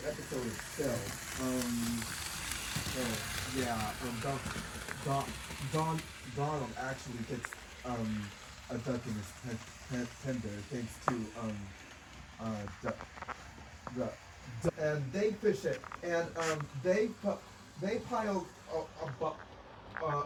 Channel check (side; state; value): both; identical; correlation 1.00